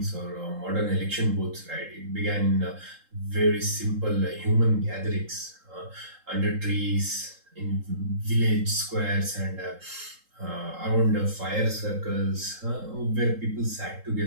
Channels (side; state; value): left; late; 3.8 ms